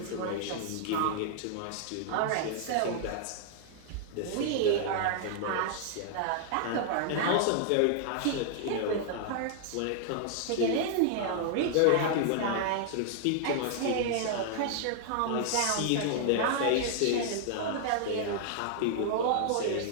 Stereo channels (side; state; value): both; different; correlation -0.01